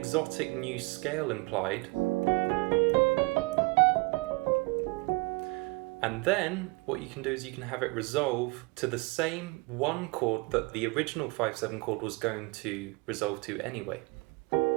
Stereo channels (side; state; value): left; quieter; 26.6 dB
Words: new scale implied. And then what you can do is you can have it resolve to the same one chord that the original 5/7 chord was going to resolve to anyway.